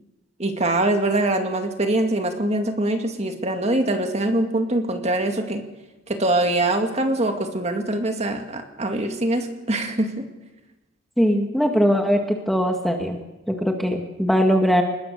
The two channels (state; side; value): normal; both; correlation 0.59